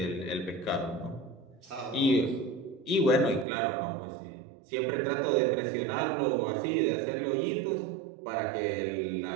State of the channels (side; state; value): left; drops out; at 3.5 s